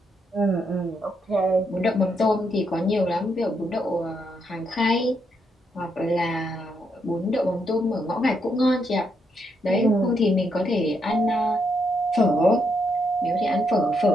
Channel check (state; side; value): normal; both; correlation 0.78